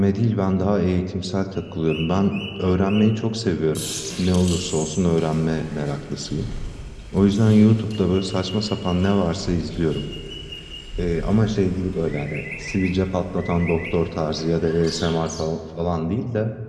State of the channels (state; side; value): identical; both; correlation 1.00